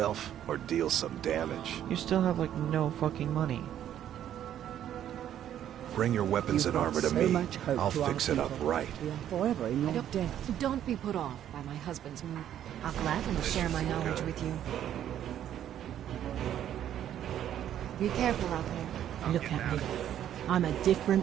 or deal some damage? You still have like no fucking money. Bring your weapons and armor to me. I'll fix it up right. Forever in your debt. Don't be put off by my husband's move. I'll gladly share my knowledge with you. Be careful out there. Look at me. I'm a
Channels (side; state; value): left; quieter; 10.8 dB